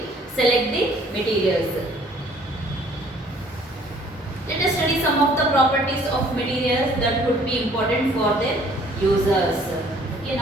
select the materials. Let us study some of the properties of materials that could be important for their users. Okay,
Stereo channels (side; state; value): both; normal; correlation 0.57